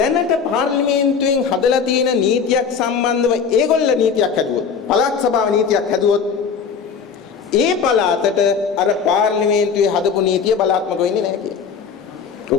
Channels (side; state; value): right; quieter; 6.2 dB